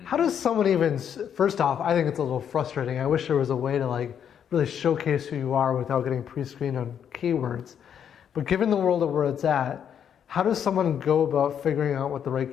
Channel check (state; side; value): quieter; right; 8.6 dB